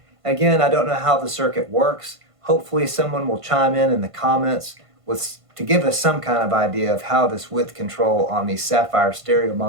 Again, I don't know how the circuit works. Hopefully someone will chime in the comments to give us some kind of idea of how this width control on these Sapphyre stereo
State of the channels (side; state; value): left; late; 1.5 ms